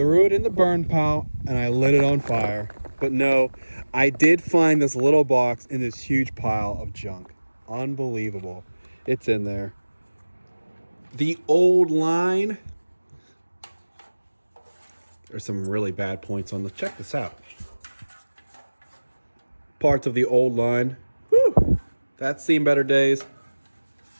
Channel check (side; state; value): both; inverted; correlation -1.00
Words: it in the burn pile and I lit it on fire. But no, I did find this little box in this huge pile of junk. Unbelievable. It's in there. The old line. There's some really bad points on this. Check this out. Parts of the old line. Whew. That's seen better days.